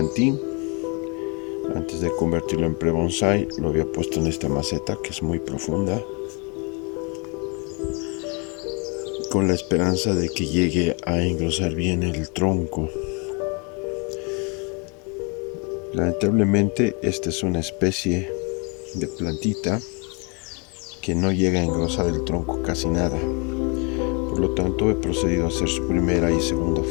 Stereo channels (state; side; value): quieter; right; 33.0 dB